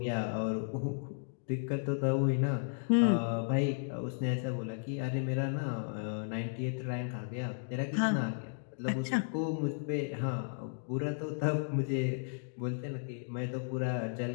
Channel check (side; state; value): right; silent; digital silence